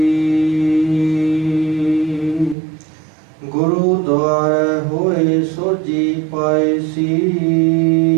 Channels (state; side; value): drops out; left; at 2.6 s